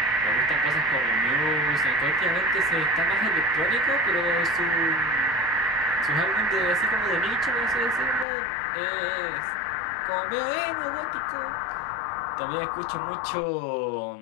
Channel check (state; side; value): drops out; right; at 8.2 s